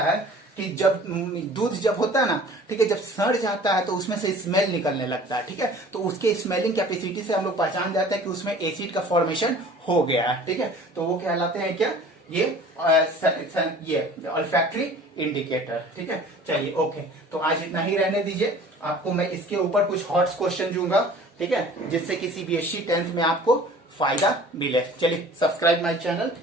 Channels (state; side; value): normal; both; correlation 0.46